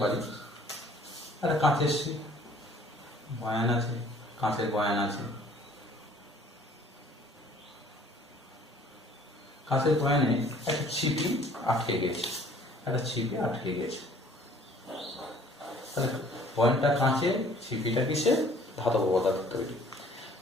পারি একটা কাঁচের বয়ান আছে, কাঁচের বয়ান আছে, কাঁচের বয়ানে একটা ছিপি আটকে গেছে, তাহলে বয়ানটা কাঁচের, ছিপিটা কিসে? ধাতব পদার্থ তৈরি।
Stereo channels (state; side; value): normal; both; correlation 0.55